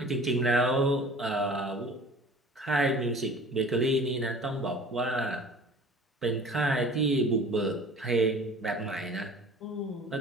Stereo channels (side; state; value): both; normal; correlation 0.44